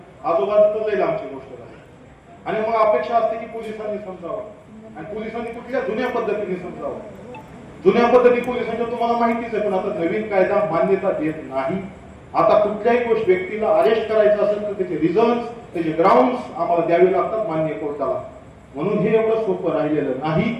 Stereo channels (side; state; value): both; identical; correlation 1.00